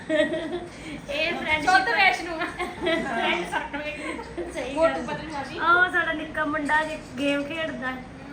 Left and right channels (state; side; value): identical; both; correlation 1.00